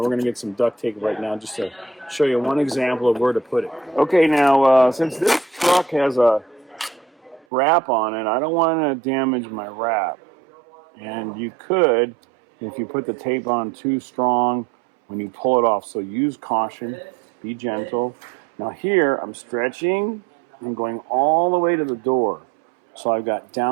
going to get some duct tape right now just to show you one example of where to put it. Okay, now since this truck has a wrap on it, I don't want to damage my wrap. And you could, if you put the tape on too strong when you pull it off. So use caution, be gentle. Now here, I'm stretching and going all the way to the door. So I've got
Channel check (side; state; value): left; drops out; at 7.5 s